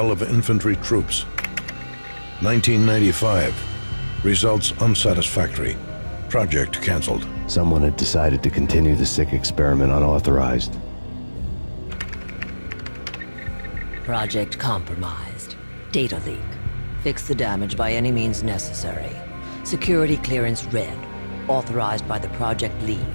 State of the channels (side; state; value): both; inverted; correlation -1.00